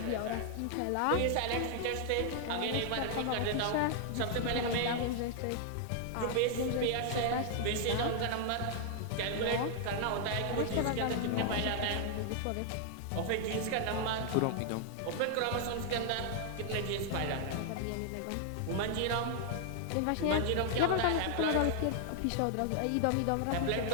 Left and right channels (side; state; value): both; different; correlation 0.00